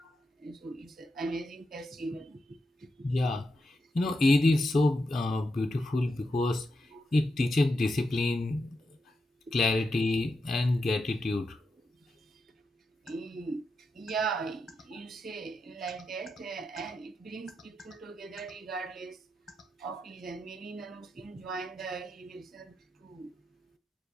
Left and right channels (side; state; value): both; normal; correlation 0.86